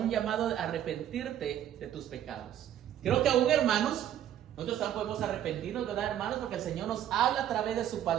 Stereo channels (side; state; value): left; quieter; 11.0 dB